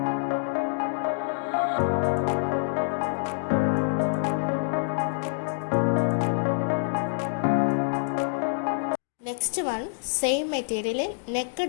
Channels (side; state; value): right; silent; digital silence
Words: നെക്സ്റ്റ് വൺ സെയിം മെറ്റീരിയലിൽ നെക്ക്